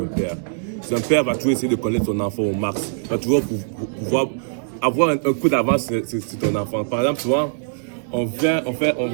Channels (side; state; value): left; silent; digital silence